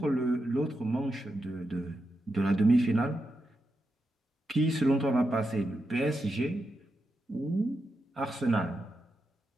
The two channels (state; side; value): normal; both; correlation 0.87